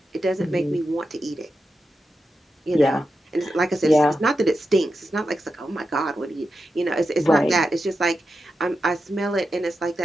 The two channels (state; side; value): normal; both; correlation 0.89